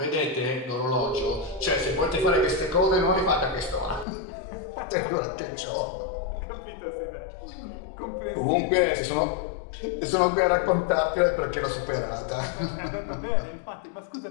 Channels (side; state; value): right; drops out; at 4.0 s